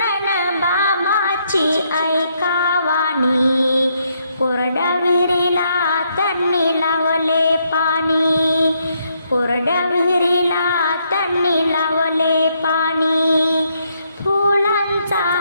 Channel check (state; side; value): inverted; both; correlation -0.75